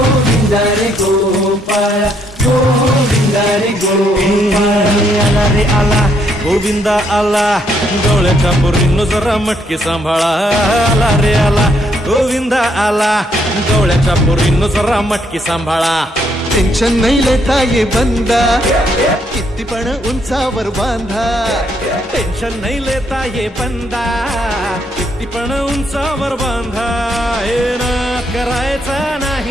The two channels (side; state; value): both; normal; correlation 0.73